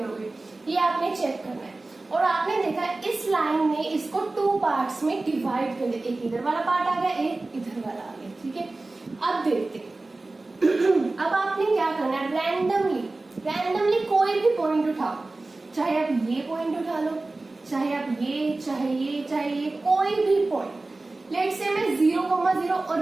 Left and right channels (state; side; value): quieter; left; 3.2 dB